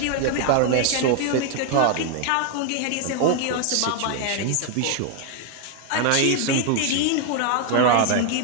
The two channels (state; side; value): different; both; correlation 0.00